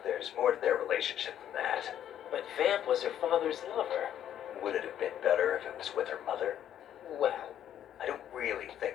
there's more to their relationship than that. But Vamp was her father's lover. Would it have been better if it was with her mother? Well, I don't really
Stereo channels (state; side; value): quieter; right; 10.5 dB